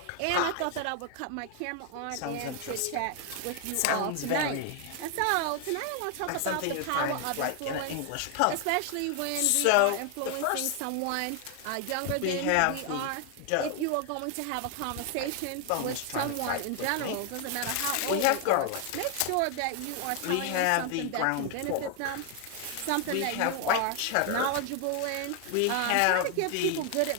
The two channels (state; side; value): different; both; correlation 0.00